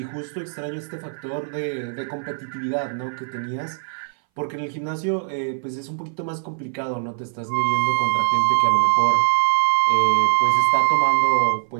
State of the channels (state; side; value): silent; left; 61 dB below the other